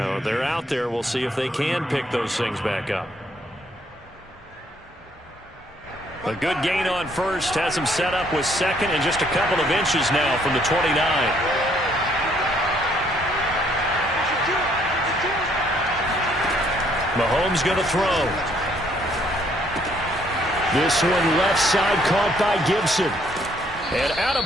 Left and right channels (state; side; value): normal; both; correlation 0.67